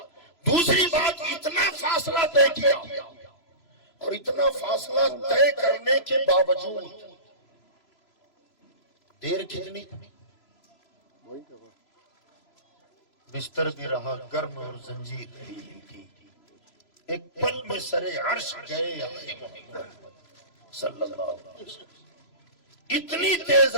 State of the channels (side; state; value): right; late; 3.0 ms